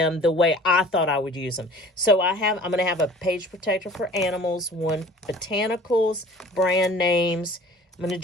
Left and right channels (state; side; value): normal; both; correlation 0.47